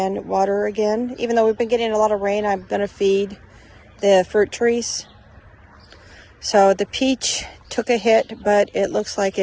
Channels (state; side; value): identical; both; correlation 1.00